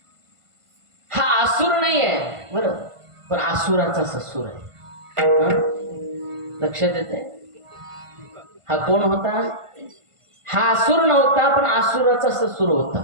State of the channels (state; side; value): late; left; 1.5 ms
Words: हा असुर नाही आहे बरं, पण असुराचा ससुर आहे. लक्षात येते? हा कोण होता? हा असुर नव्हता, पण असुराचा ससुर होता,